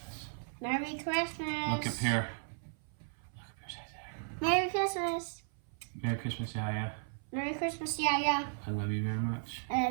Merry Christmas. Look up here. Look up here, say there. Merry Christmas. Merry Christmas, Yaya. Merry Christmas, Yaya. I love you very much. I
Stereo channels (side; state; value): left; silent; 54 dB below the other